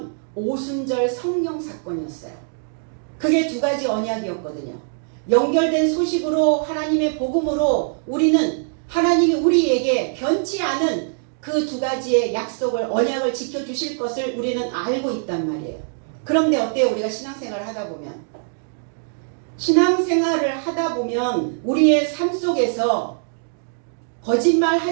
오순절 성령 사건이었어요. 그게 두 가지 언약이었거든요. 연결된 소식으로, 하나님의 복음으로 우리는 하나님이 우리에게 변치 않은 그 두 가지의 약속을, 언약을 지켜주실 것을 우리는 알고 있단 말이에요. 그런데 어때요? 우리가 신앙생활을 하다 보면. 신앙생활을 하다 보면 우리의 삶 속에서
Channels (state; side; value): silent; left; digital silence